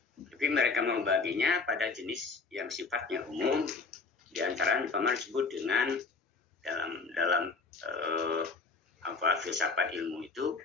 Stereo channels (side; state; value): right; quieter; 4.5 dB